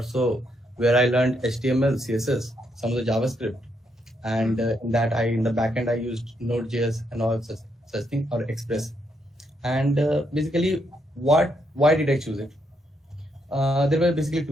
so where I learned HTML, CSS, some of the JavaScript, and in the backend I used Node.js and all such thing, or Express. And basically, why did I choose it? There were basically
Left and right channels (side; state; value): both; normal; correlation 0.77